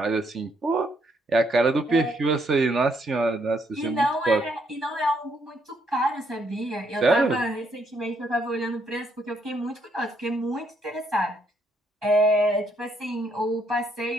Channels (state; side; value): normal; both; correlation 0.72